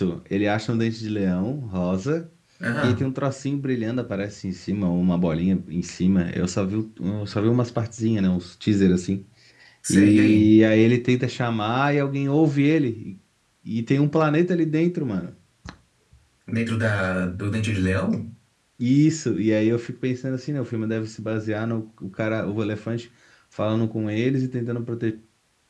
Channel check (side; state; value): both; identical; correlation 1.00